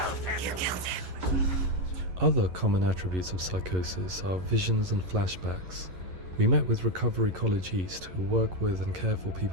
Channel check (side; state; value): left; late; 11 ms